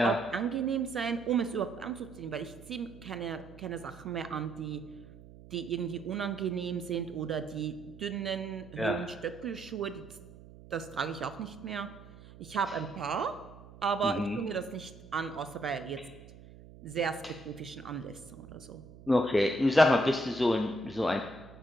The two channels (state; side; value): noise; right; hum, 18 dB below the sound